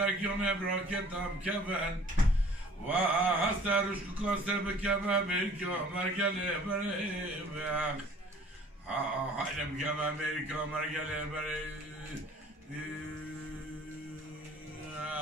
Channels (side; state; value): both; normal; correlation 0.51